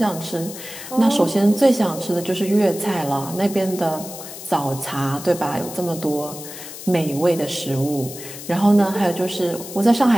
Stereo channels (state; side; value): noise; left; hiss, 12 dB below the sound